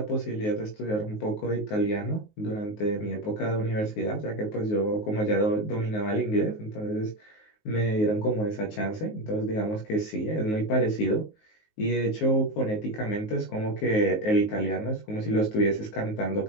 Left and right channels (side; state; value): right; late; 19 ms